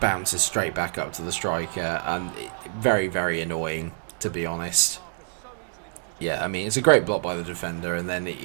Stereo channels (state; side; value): silent; left; 61 dB below the other